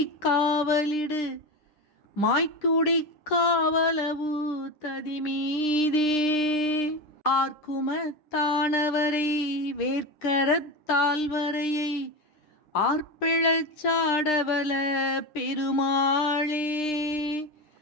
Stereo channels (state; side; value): late; right; 9.9 ms